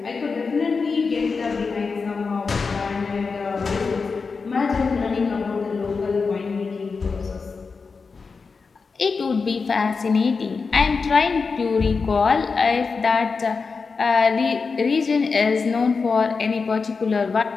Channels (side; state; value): right; quieter; 4.8 dB